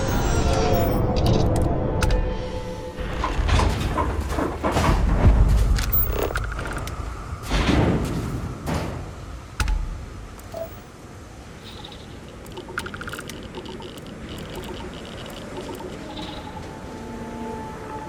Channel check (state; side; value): identical; both; correlation 1.00